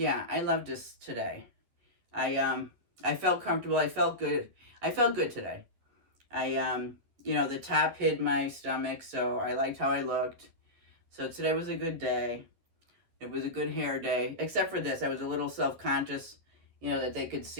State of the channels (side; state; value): left; late; 11 ms